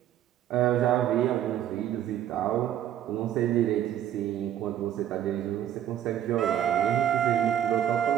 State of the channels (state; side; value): quieter; left; 10.9 dB